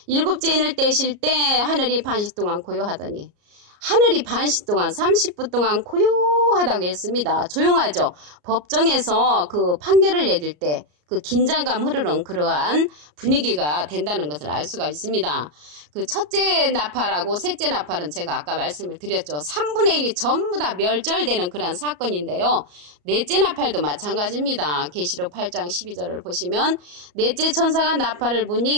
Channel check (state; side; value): late; left; 34 ms